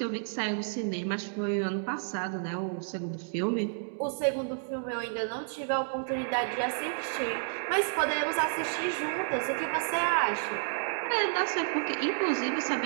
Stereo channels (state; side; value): silent; left; digital silence